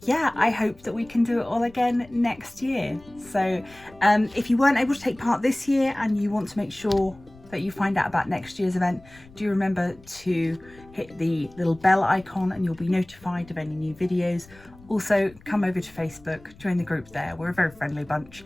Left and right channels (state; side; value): noise; left; rumble, 24 dB below the sound